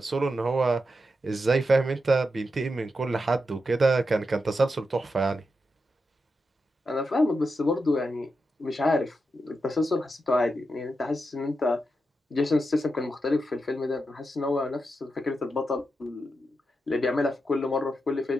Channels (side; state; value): both; normal; correlation 0.87